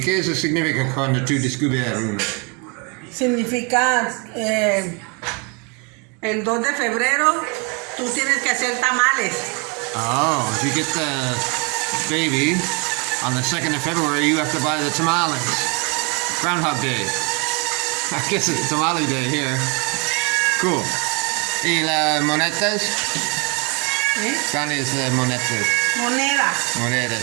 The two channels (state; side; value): quieter; left; 32.9 dB